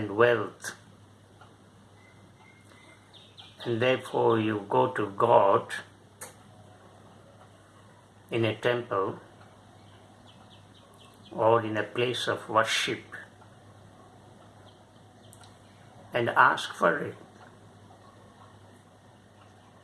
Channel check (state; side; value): identical; both; correlation 1.00